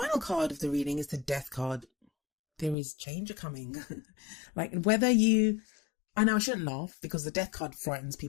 card of the reading is the Death card. There is change coming. Like, I know I shouldn't laugh because the Death card frightens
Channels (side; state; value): right; drops out; at 2.8 s